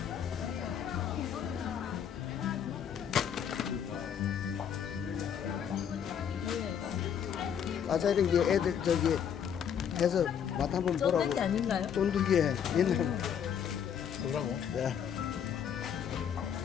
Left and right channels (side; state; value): right; quieter; 8.3 dB